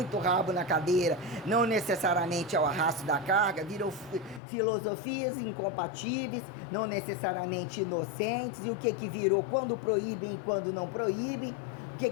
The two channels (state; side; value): drops out; right; at 4.4 s